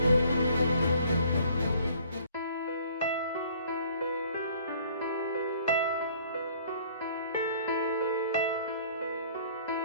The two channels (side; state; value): both; inverted; correlation -0.55